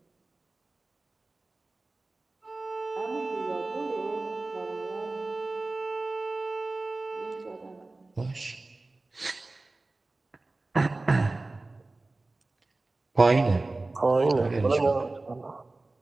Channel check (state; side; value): quieter; left; 3.2 dB